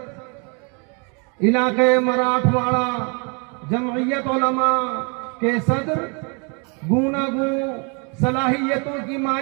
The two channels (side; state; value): left; quieter; 34.8 dB